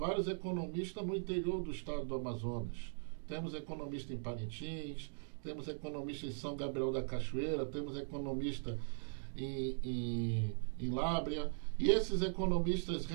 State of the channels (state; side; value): silent; left; digital silence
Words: economistas no interior do estado do Amazonas. Temos economista em Parintins, temos economista em São Gabriel da Cachoeira, temos economista em Lábrea, e esses economistas